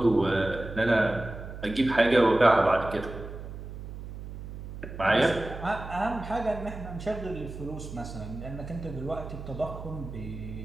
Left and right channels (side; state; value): right; noise; hum, 10 dB below the sound